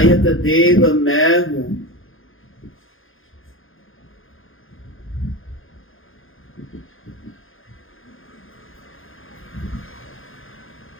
देव मैं हूँ।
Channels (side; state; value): right; late; 0.59 ms